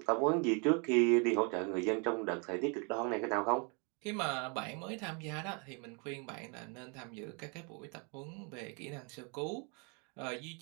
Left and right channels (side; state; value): left; quieter; 34.9 dB